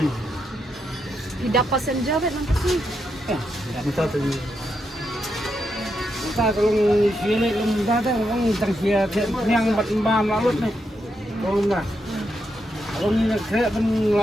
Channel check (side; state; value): both; normal; correlation 0.82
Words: Tidak passenger bet nang kasi. minta tu Kita kalau sini lembah tu orang tang sia yang bat lalut ni. Kalau nak. Kalau ni nak